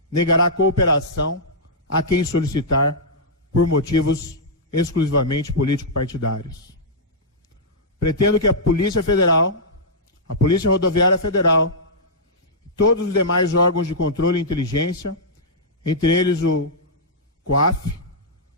negará cooperação a quem solicitar por motivos exclusivamente político-partidários. Pretendo que a Polícia Federal, a Polícia Rodoviária Federal, e todos os demais órgãos de controle e inteligência, entre eles o COAF,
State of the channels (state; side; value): normal; both; correlation -0.11